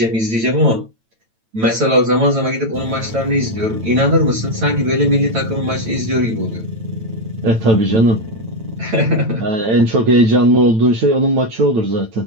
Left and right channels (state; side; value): late; left; 9.0 ms